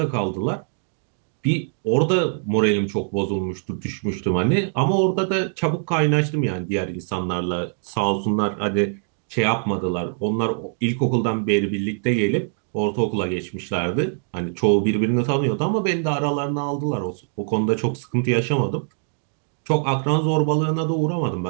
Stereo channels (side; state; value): left; silent; digital silence